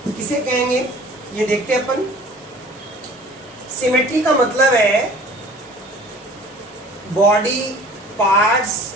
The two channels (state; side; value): normal; both; correlation 0.47